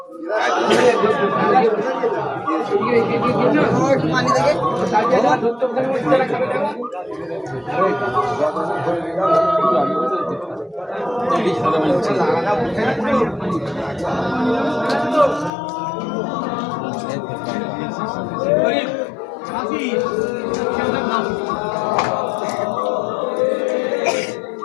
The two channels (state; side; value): drops out; right; at 15.5 s